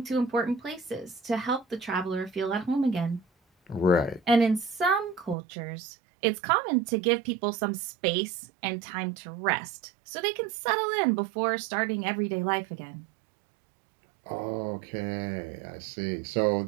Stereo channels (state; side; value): drops out; left; at 5.4 s